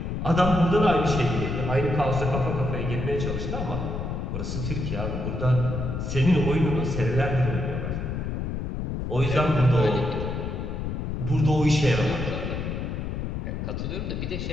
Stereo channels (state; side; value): noise; left; rumble, 3 dB below the sound